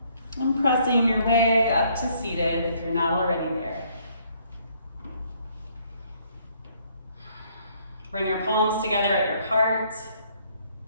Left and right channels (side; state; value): both; inverted; correlation -0.65